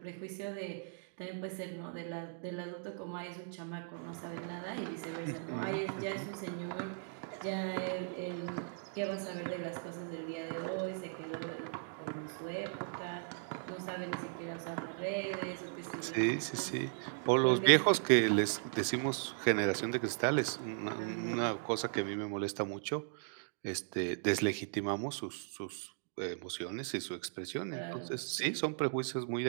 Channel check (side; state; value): left; silent; digital silence